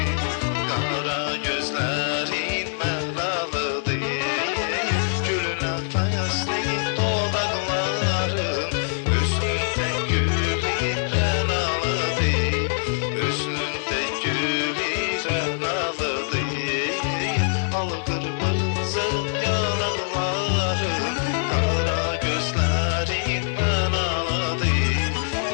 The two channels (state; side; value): silent; right; digital silence